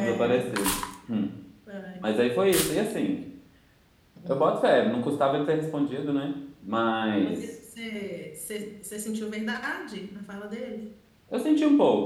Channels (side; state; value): both; identical; correlation 1.00